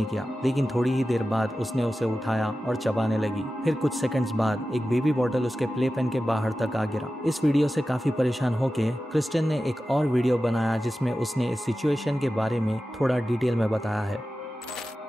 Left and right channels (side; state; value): both; normal; correlation 0.94